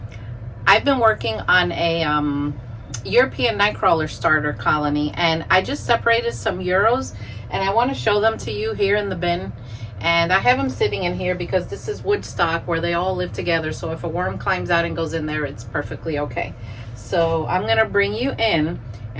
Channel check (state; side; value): identical; both; correlation 1.00